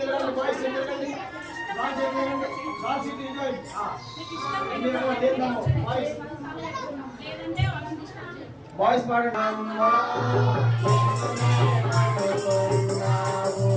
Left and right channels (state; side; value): identical; both; correlation 1.00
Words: boys ఎదురుగండి, boys ఎదురుగండి, బాయ్స్ ఇటు ఏందమ్మో బాయ్స్ బాయ్స్ పాడండి.